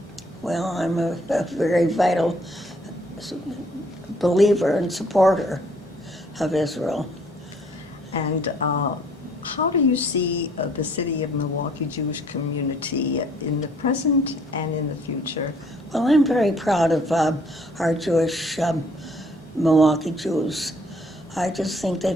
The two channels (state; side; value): normal; both; correlation 0.62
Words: Well, I'm a very vital believer and supporter of Israel. And how do you see the city of Milwaukee Jewish community in the present and in the future? Well, I'm very proud of our Jewish Milwaukee Jews. I just think